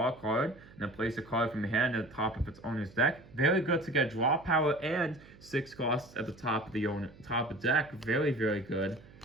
a card, and then place a card from your hand at the top of its owner's deck. Very good to get draw power and 6 costs at the top of the top of the deck. Very, very good.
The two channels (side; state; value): right; noise; hum, 22 dB below the sound